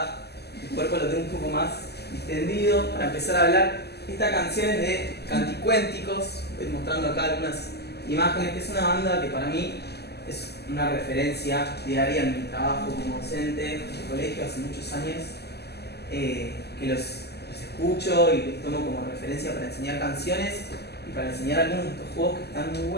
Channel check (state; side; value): late; right; 0.47 ms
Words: el cuerpo lo tengo un poco más distendido para empezar a hablar. Esta canción es de Canticuénticos, voy mostrando acá algunas imágenes, que es una banda que para mí es una referencia diaria en mi trabajo como docente de colegio hace muchos años, que los escucho y los tomo como referencia para enseñar canciones y para enseñar algunos de estos juegos que están muy